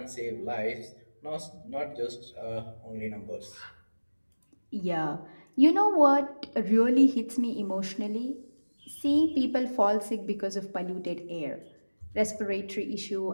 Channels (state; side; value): inverted; both; correlation -1.00